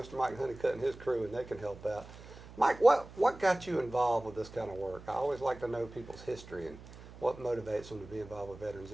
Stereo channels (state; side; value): noise; right; hum, 17 dB below the sound